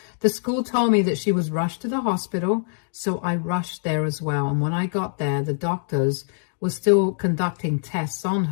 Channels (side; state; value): right; silent; digital silence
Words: The school told me that she was rushed to the hospital, so I rushed there as well. And when I got there, the doctors were still conducting tests on